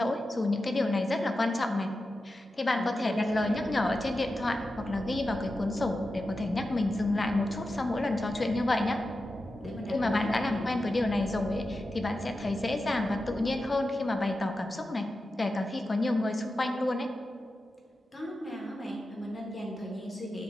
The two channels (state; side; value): normal; both; correlation 0.91